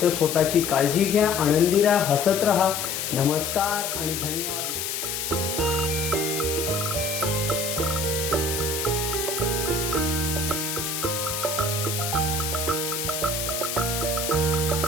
स्वतःची काळजी घ्या, आनंदी राहा, हसत राहा. नमस्कार आणि धन्यवाद.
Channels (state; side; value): noise; left; hiss, 3 dB below the sound